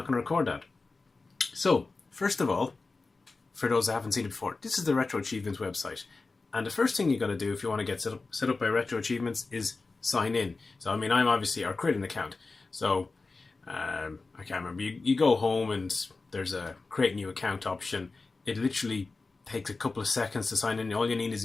going to record that. So, first of all, for those that haven't seen it before, this is the Retro Achievements website. And the first thing you got to do if you want to get set up by Retro Achievements is sign in. So, I mean, I'm obviously, or create an account. So, I can't remember, you go home and there's a create new account option. It literally takes a couple of seconds to sign in. All you need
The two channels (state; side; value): quieter; right; 3.8 dB